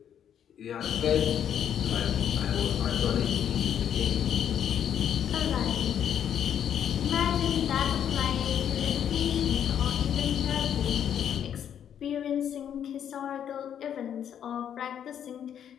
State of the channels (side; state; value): right; quieter; 9.2 dB